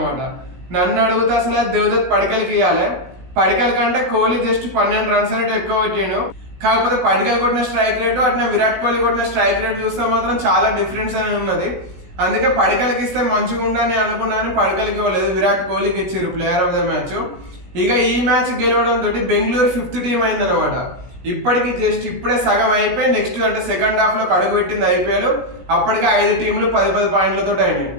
నన్ను అడిగితే అసలు దేవదత్ పడికల్కి ఇవ్వాలి. పడికల్ కంటే కోహ్లీ జస్ట్ 12 రన్స్ అనేవి ఎక్కువ కొట్టాడు. కాకపోతే పడికల్ కొట్టిన స్ట్రైక్ రేటు అట్లా విరాట్ కోహ్లీ కొట్టిన స్ట్రైక్ రేట్ చూస్తే మాత్రం చాలా డిఫరెన్స్ అనేది ఉన్నది. అందుకే పడికల్కి ఇస్తే మంచిగా ఉండని అనుకున్నాను. పడికల్కి ఇవ్వలేదు, విరాట్ కోహ్లీకి ఇచ్చారు ప్లేయర్ ఆఫ్ ద మ్యాచ్. ఇక ఈ మ్యాచ్ గెలవడంతో బెంగళూరు 5th టీం అయిందనమాట. ఇప్పటికి జస్ట్ ఇప్పుడే సగం అయిపోయి నెక్స్ట్ అంటే సెకండ్ హాఫ్లో అడుగు పెట్టింది ఐపీఎల్. అప్పటికే 5 టీంలు 10 పాయింట్లతో అయినాయి.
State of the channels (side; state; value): left; late; 16 ms